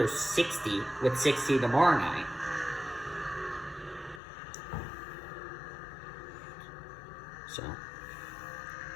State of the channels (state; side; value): drops out; right; at 4.2 s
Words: 60, with 60 tomorrow night. So.